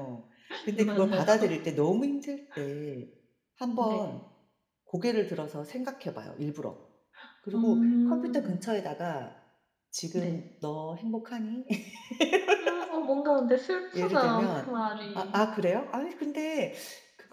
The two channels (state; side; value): identical; both; correlation 1.00